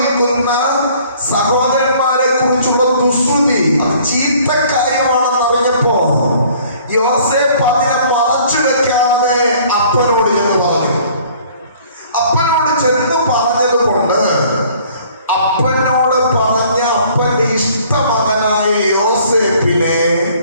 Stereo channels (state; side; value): inverted; both; correlation -0.55